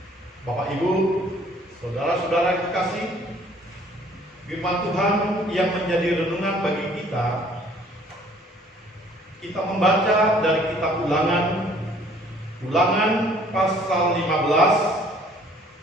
Bapak Ibu, saudara-saudara yang kekasih, firman Tuhan yang menjadi renungan bagi kita membaca dari kitab Ulangan pasal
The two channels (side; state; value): both; normal; correlation 0.57